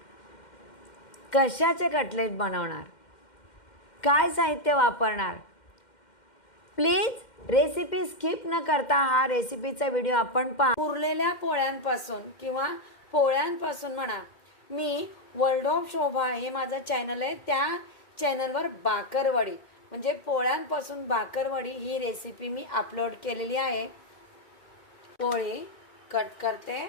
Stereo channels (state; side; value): late; right; 2.1 ms